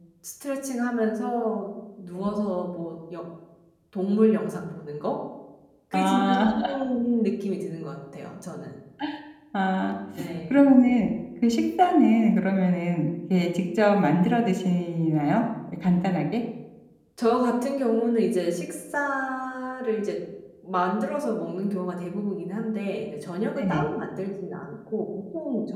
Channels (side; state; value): both; identical; correlation 1.00